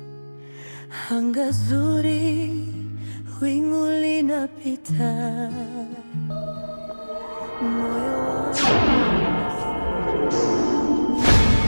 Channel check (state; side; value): inverted; both; correlation -1.00